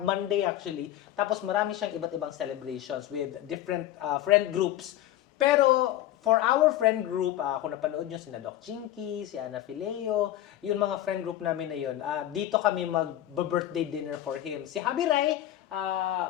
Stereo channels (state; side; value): quieter; right; 13.0 dB